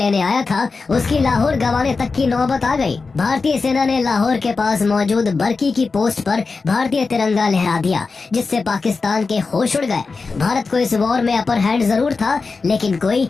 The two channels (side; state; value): right; quieter; 4.3 dB